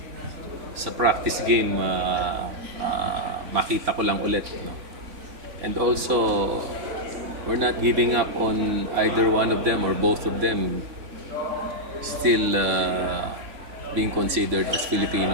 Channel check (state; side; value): late; left; 3.6 ms